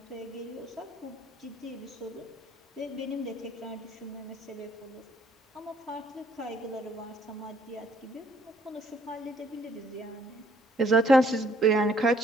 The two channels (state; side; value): normal; both; correlation 0.63